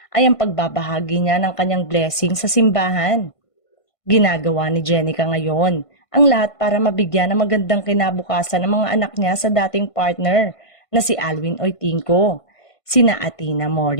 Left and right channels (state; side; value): late; right; 1.5 ms